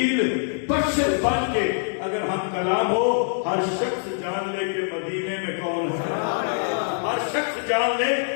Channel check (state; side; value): silent; right; digital silence